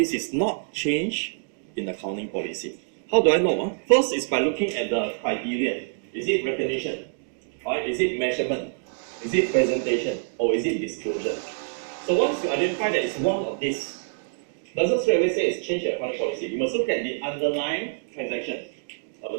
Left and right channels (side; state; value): left; silent; digital silence